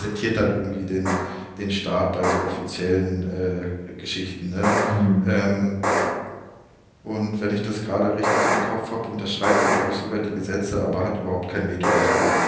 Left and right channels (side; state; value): both; identical; correlation 1.00